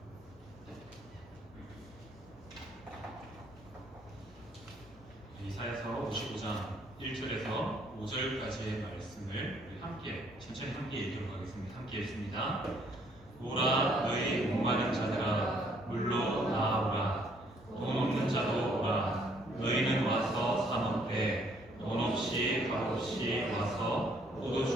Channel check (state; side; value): normal; both; correlation 0.65